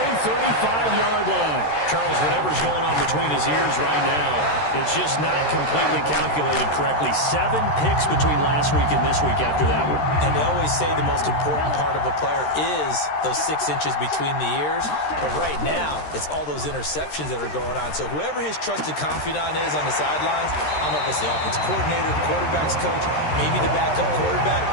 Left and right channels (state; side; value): late; right; 13 ms